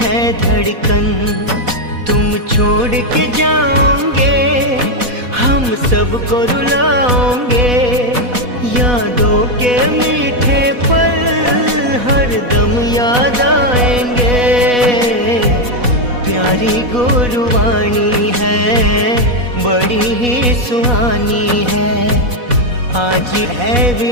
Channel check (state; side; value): late; left; 4.1 ms